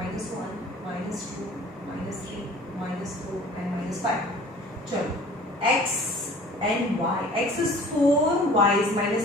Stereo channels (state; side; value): normal; both; correlation 0.47